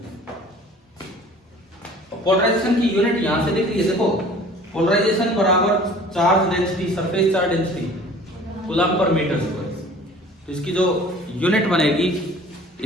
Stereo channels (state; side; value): normal; both; correlation 0.48